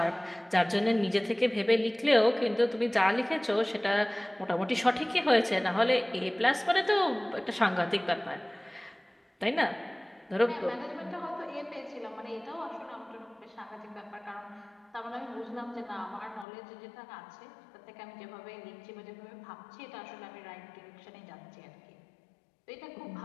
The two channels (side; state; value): right; drops out; at 16.4 s